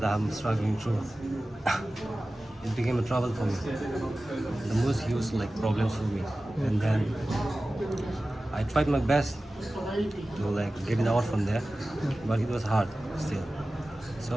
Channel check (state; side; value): normal; both; correlation 0.96